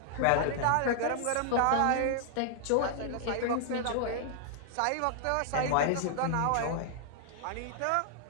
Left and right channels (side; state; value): both; different; correlation -0.01